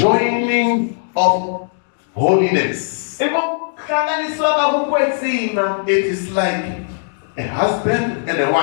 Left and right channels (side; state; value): right; silent; digital silence